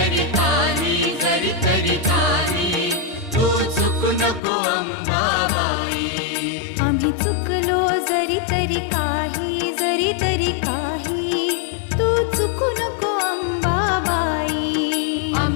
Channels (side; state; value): right; drops out; at 4.4 s